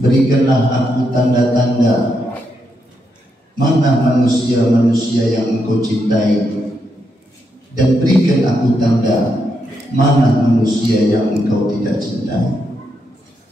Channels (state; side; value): normal; both; correlation 0.81